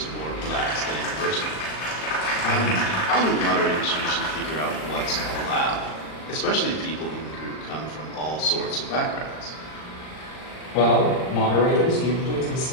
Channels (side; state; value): right; late; 39 ms